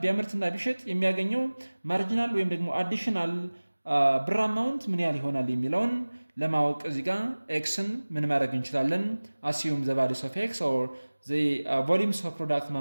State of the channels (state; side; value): inverted; both; correlation -1.00